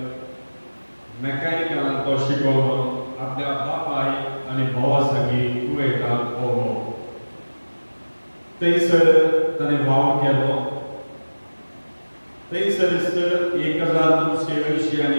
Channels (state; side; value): inverted; both; correlation -1.00